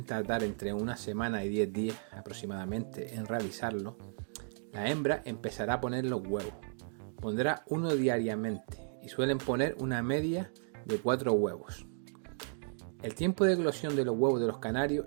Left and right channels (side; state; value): left; silent; digital silence